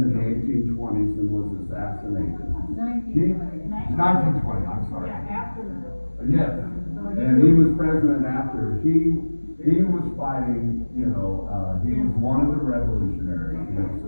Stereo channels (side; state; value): both; inverted; correlation -1.00